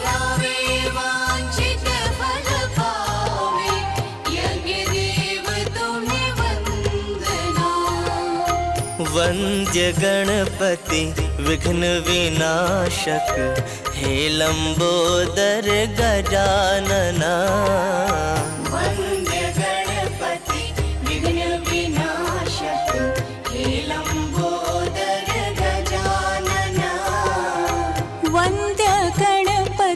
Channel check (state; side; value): identical; both; correlation 1.00